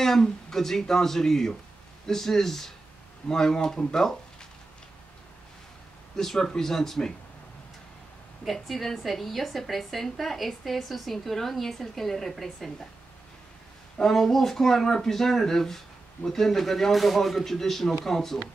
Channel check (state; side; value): quieter; left; 3.2 dB